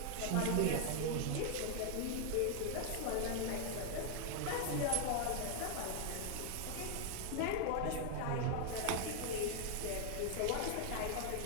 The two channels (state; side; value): different; both; correlation 0.00